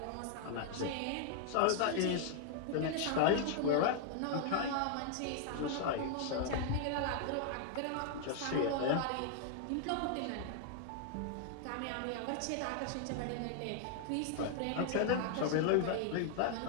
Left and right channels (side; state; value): both; different; correlation 0.00